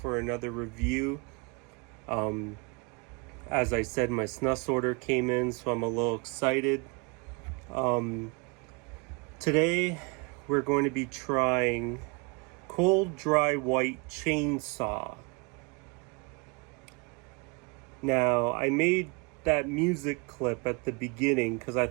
another review. As I said, my Snus order came in, so I'm a little excited. Today we're going to be trying Cold Dry White Chainsaw. Now, I made that music clip at the beginning because I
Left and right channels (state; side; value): quieter; left; 30.6 dB